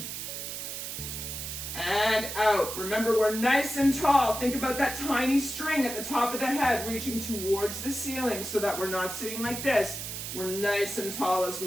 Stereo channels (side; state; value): right; noise; hiss, 6 dB below the sound